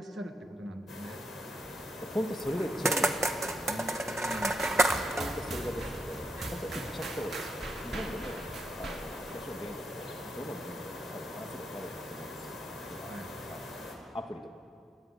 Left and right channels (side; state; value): both; normal; correlation 0.81